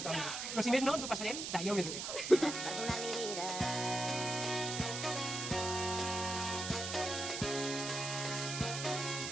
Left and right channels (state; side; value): noise; right; hiss, 4 dB below the sound